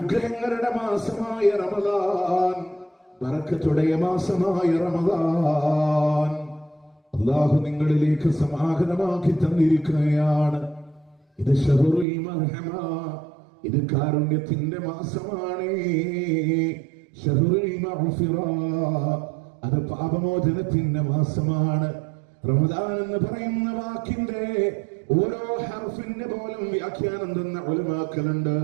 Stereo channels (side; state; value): left; drops out; at 12.1 s